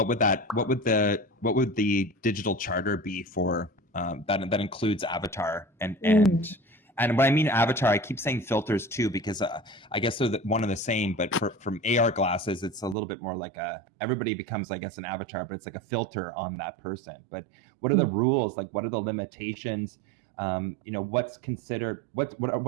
would the digital charter be for that includes Avatar and when I mean Avatar, I keep saying filters too, because I guess they're one and the same, but from AR glasses, it's a little bit more like everybody becomes, I guess, an avatar, but it's like a filter on that person. But what are the rules? Like, what are the limitations? What's considered, what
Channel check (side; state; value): left; drops out; at 13.0 s